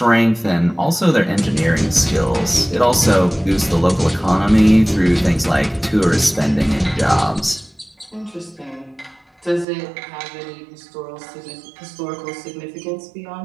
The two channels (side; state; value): left; drops out; at 9.7 s